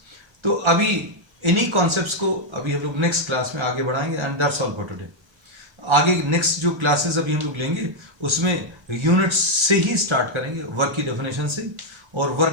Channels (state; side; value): late; left; 1.3 ms